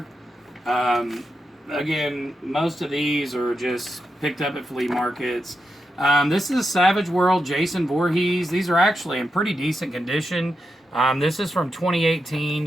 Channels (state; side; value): normal; both; correlation 0.87